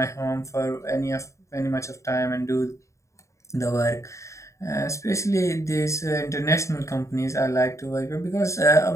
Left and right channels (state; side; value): late; right; 0.15 ms